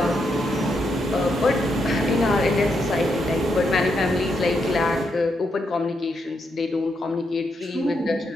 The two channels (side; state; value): both; normal; correlation 0.81